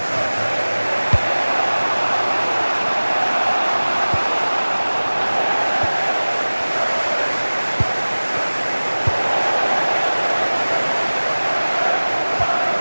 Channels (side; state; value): both; inverted; correlation -1.00